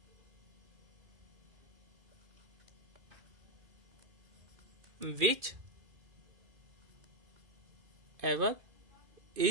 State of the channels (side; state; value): left; late; 2.4 ms